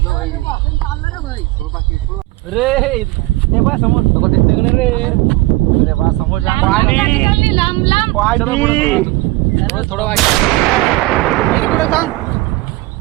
रे ते बा समोर सगळं दिसतंय का नाही रे? अरे बा समोर जा. लांब लांब. थोडं वाईट.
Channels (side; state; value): left; quieter; 20.1 dB